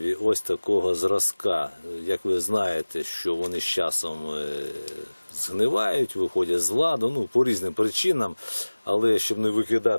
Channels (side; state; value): both; inverted; correlation -1.00